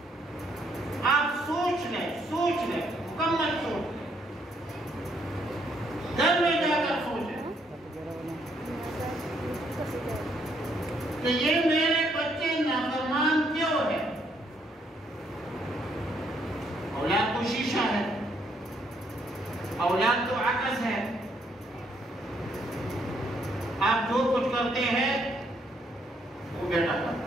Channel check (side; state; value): both; normal; correlation 0.71